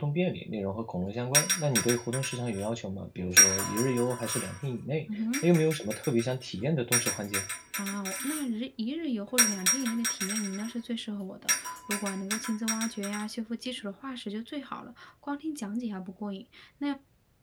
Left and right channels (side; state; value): both; identical; correlation 1.00